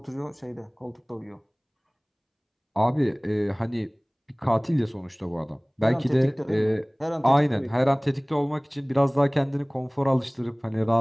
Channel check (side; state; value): both; identical; correlation 1.00